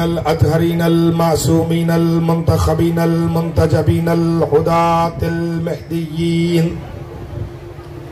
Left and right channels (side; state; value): both; identical; correlation 1.00